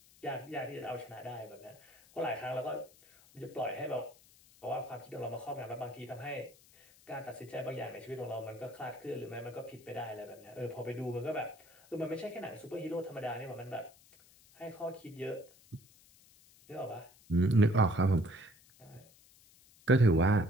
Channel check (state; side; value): noise; left; hiss, 26 dB below the sound